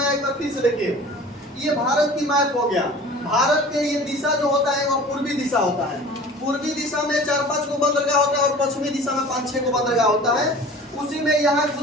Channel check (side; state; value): both; normal; correlation 0.42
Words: आया एक बार फिर से देखिए। ये भारत की मैप हो गया। भारत के ये दिशा जो होता है वो पूर्वी दिशा होता है। पूर्वी दिशा में 4-5 को बंदरगाह होता है, और पश्चिमी दिशा में 5-6 को बंदरगाह होता है। उसी में यहाँ